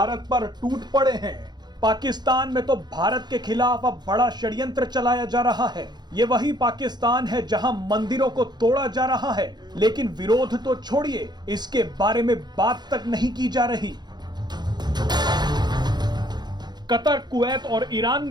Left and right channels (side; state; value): left; late; 0.21 ms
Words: पर टूट पड़े हैं। पाकिस्तान में तो भारत के खिलाफ अब बड़ा षड्यंत्र चलाया जा रहा है। ये वही पाकिस्तान है जहां मंदिरों को तोड़ा जा रहा है, लेकिन विरोध तो छोड़िए, इसके बारे में बात तक नहीं की जा रही। कतर, कुवैत और ईरान